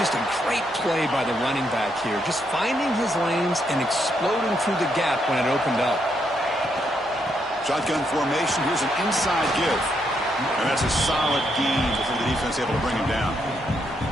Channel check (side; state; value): both; normal; correlation 0.77